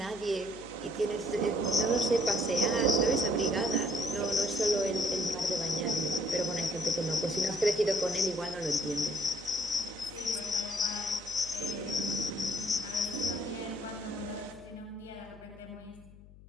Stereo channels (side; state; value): left; noise; hum, 20 dB below the sound